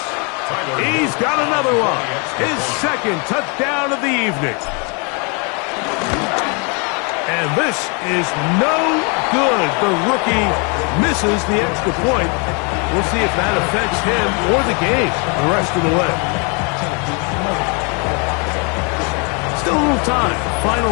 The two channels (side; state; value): right; quieter; 34.0 dB